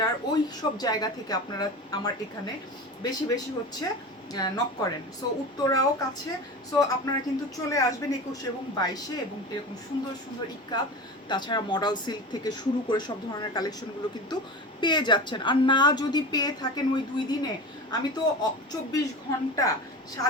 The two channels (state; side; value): normal; both; correlation 0.29